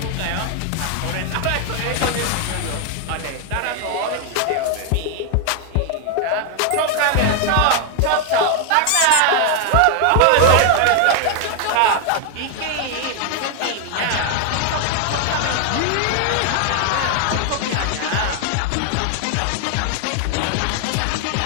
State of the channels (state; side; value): different; both; correlation 0.00